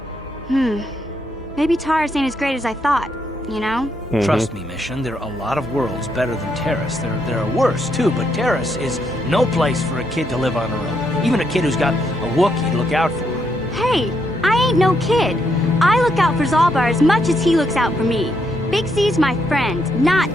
Maybe Taurus ain't as great as I thought, you know? Trust me, Mission, there are a lot of worlds better than Terrace. There are worse, too, but Terrace is no place for a kid to live on her own. Even a kid who's got a Wookiee to look out for. Hey, I ain't no kid. I look out for Zalbar as much as he looks out for me. Big Z's my friend, not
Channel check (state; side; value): normal; both; correlation 0.77